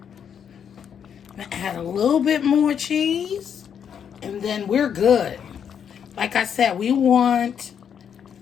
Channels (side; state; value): right; quieter; 8.0 dB